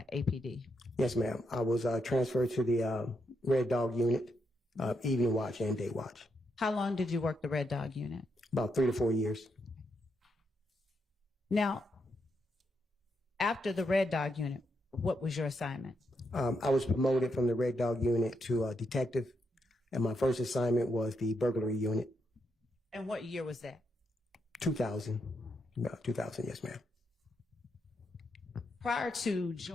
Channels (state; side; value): normal; both; correlation 0.80